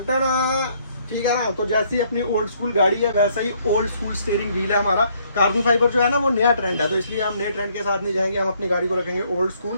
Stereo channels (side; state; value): both; inverted; correlation -0.67